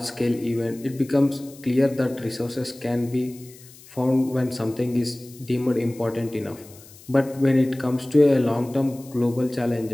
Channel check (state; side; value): noise; left; hiss, 22 dB below the sound